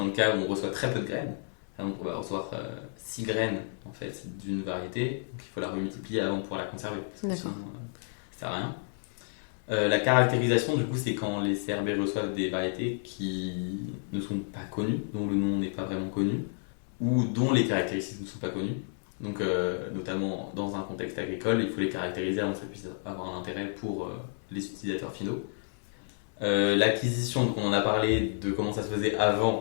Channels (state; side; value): silent; right; 57 dB below the other